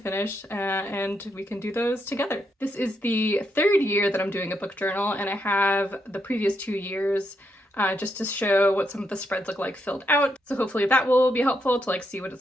and we can do those together. This is the third year that I'm doing a book journal and I have the previous 2 years just to show what some of the spreads look like filled out. So hopefully that will be helpful to like see what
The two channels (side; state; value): both; normal; correlation 0.80